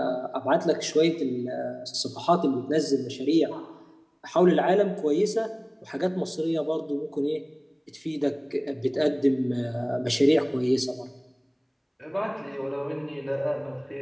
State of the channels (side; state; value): both; identical; correlation 1.00